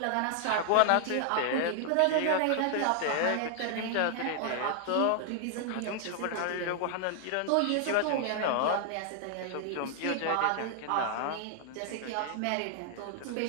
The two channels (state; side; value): different; both; correlation 0.00